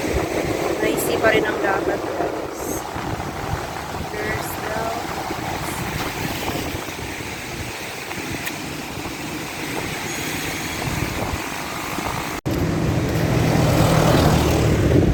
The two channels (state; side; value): identical; both; correlation 1.00